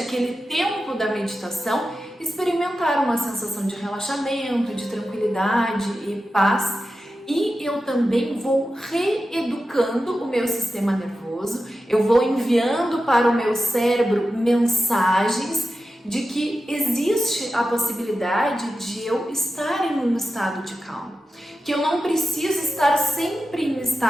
tempo da meditação, experimentar uma sensação de relaxamento, de tranquilidade e paz. E eu também vou reeducando o meu sistema nervoso, eu vou enviando para o meu cérebro mensagens de que existe a possibilidade de eu estar em um estado de calma, que eu não preciso estar sempre em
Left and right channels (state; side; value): normal; both; correlation 0.91